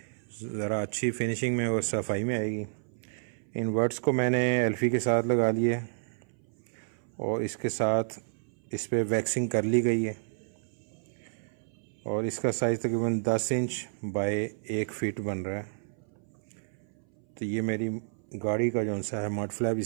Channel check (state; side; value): silent; left; 58 dB below the other